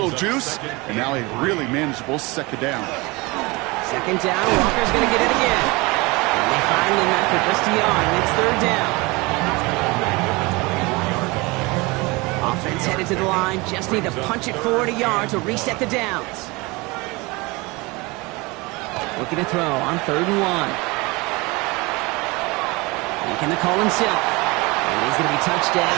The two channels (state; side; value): quieter; left; 24.7 dB